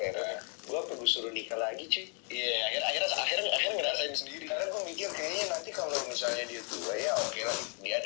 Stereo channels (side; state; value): right; quieter; 39.9 dB